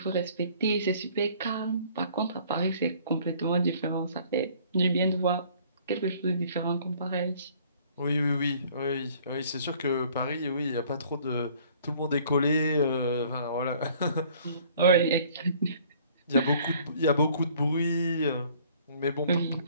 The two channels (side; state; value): both; inverted; correlation -0.56